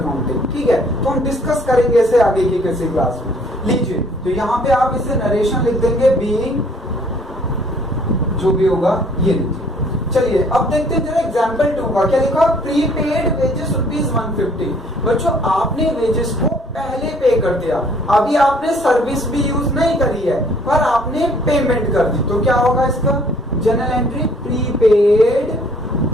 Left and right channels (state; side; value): normal; both; correlation 0.59